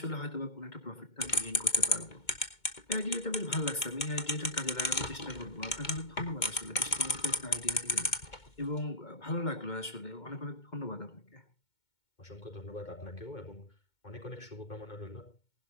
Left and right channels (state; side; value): late; right; 2.2 ms